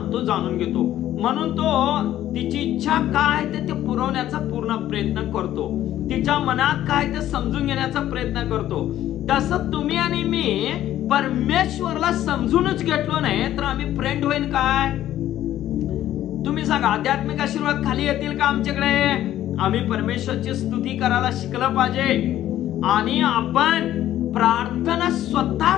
तो जाणून घेतो. म्हणून तो तिची इच्छा काय ते पुरवण्याचा पूर्ण प्रयत्न करतो. तिच्या मनात काय ते समजून घेण्याचा प्रयत्न करतो. तसं तुम्ही आणि मी परमेश्वरला समजूनच घेतलो नाही तर आम्ही फ्रेंड होईल काय? तुम्ही सांगा, आध्यात्मिक आशीर्वाद खाली येतील का आमच्याकडे? आम्ही परमेश्वरची स्तुती करायला शिकलं पाहिजे आणि आपण प्रार्थना स्वतः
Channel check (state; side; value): quieter; right; 12.7 dB